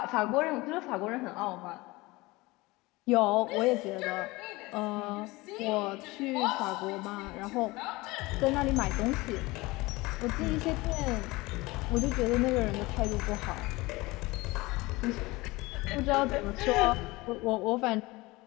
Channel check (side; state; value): right; quieter; 21.8 dB